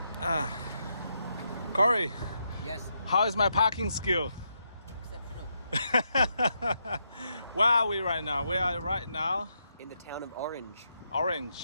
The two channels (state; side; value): inverted; both; correlation -0.81